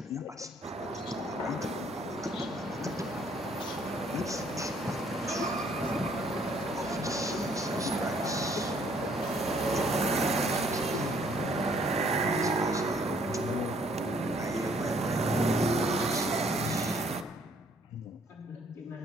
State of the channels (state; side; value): normal; both; correlation 0.63